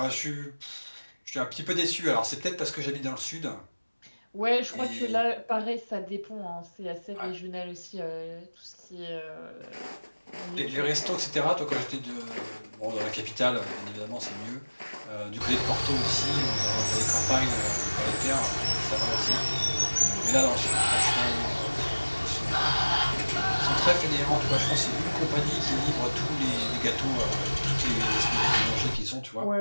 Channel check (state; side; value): inverted; both; correlation -1.00